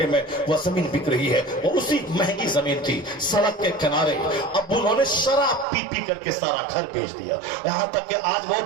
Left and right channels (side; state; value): left; drops out; at 5.7 s